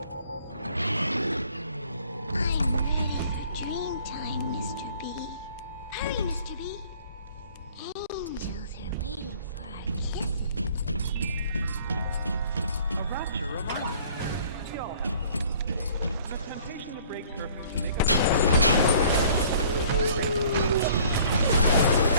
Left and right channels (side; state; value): both; inverted; correlation -0.54